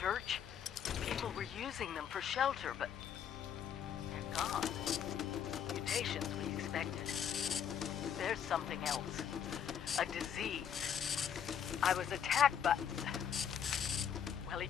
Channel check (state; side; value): quieter; right; 8.5 dB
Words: people were using them for shelter, but they're gone. Mutations we expected. there's something else. A disease. I was attacked by... Well, it